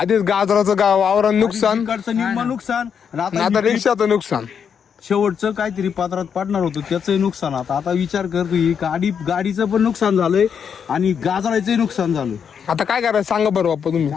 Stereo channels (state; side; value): quieter; right; 7.2 dB